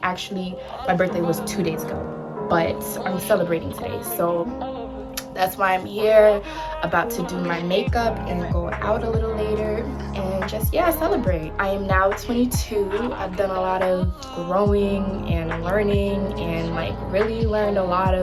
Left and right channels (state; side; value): identical; both; correlation 1.00